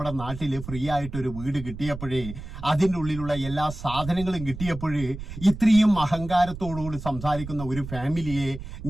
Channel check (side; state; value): right; noise; rumble, 11 dB below the sound